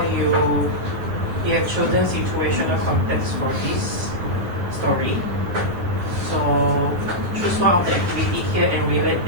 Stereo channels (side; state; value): left; late; 9.8 ms